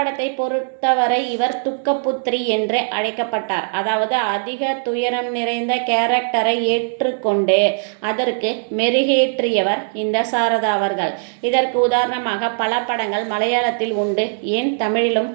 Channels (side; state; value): left; silent; digital silence